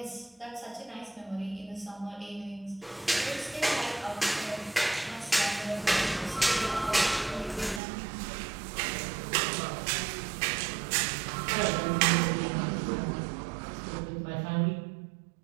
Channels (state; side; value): drops out; left; at 7.8 s